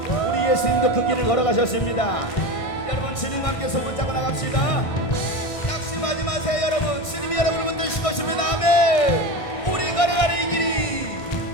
우리 예수님도 그 길을 걸어가셨습니다. 여러분 주님과 함께 손붙잡고 나갑시다. 낙심하지 마세요 여러분. 주님이 여러분을 붙드실 것입니다. 아멘. 우리 걸어가는 이 길이,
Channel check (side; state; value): right; late; 1.5 ms